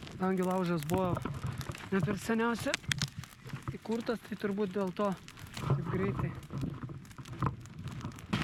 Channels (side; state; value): both; identical; correlation 1.00